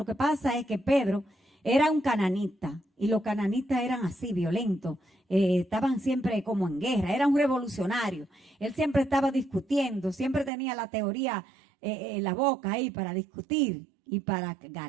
que pasa es que Pedro era un cananita, y los cananitas eran así, violentos. Estaban siempre como en guerra, era un revolucionario. Él siempre estaba discutiendo, siempre tenía la teoría en la boca ahí para discutir y para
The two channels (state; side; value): drops out; left; at 10.5 s